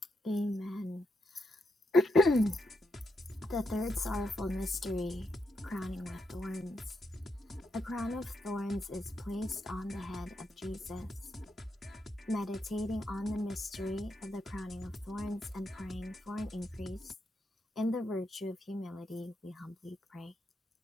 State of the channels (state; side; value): normal; both; correlation 0.82